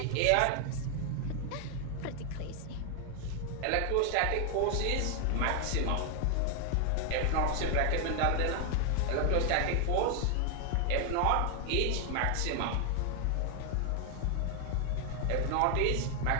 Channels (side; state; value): both; different; correlation 0.00